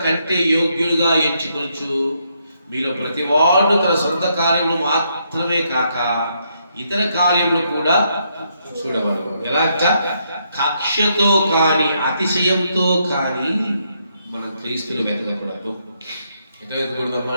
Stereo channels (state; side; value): inverted; both; correlation -0.76